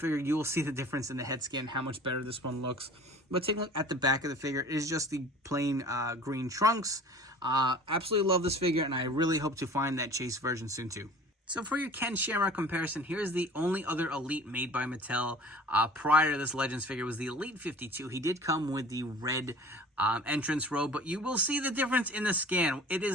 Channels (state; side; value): normal; both; correlation 0.44